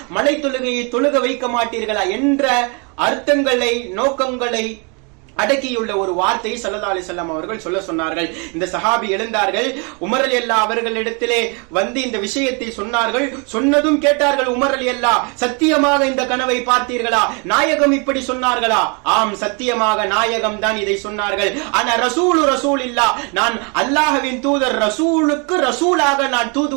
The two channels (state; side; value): quieter; left; 33.5 dB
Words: மலை தொழுகையை தொழுக வைக்க மாட்டீர்களா என்ற அர்த்தங்களை, நோக்கங்களை அடக்கியுள்ள ஒரு வார்த்தையை ஸல்லல்லாஹு அலைஹி வஸல்லம் அவர்கள் சொல்ல சொன்னார்கள். இந்த சஹாபி எழுந்தார்கள், உமர் ரலியல்லாஹு அவர்களிடத்திலே வந்து இந்த விஷயத்தை சொன்னார்கள். சொன்னதும் கேட்டார்கள், உமர் ரலியல்லாஹு, சத்தியமாக இந்த கனவை பார்த்தீர்களா? நாயகம் இப்படி சொன்னார்களா? ஆம், சத்தியமாக நாயகம் தான் இதை சொன்னார்கள். ஆனா ரசூலில்லாஹ், நான் அல்லாஹ்வின் தூதர், ரசூலுக்கு ரசூலாக நான்